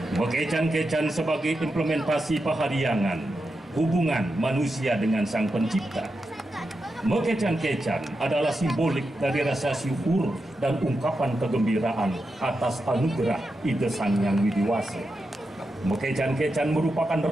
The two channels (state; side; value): normal; both; correlation 0.88